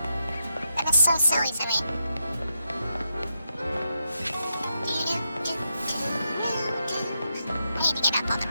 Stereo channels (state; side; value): inverted; both; correlation -0.84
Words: That is so silly to me. I need to get up on the